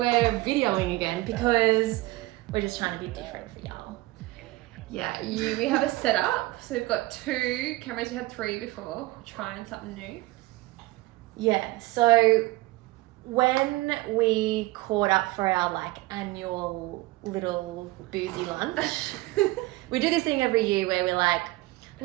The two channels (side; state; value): left; quieter; 20.0 dB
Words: videoing again because we're just trying to be different for y'all. Yeah, we have a setup. So we've got 2 cameras. We had 3 before. Trying something new. Yeah, so when we caught up for our annual little boozy lunch, we do this thing every year where we're like,